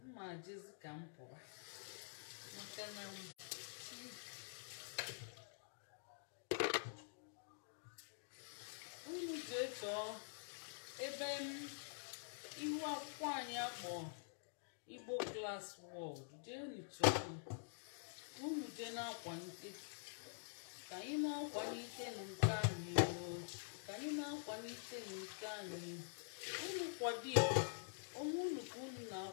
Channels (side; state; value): right; silent; digital silence